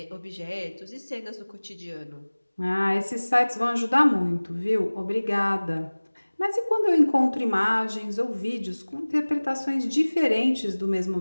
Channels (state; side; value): inverted; both; correlation -1.00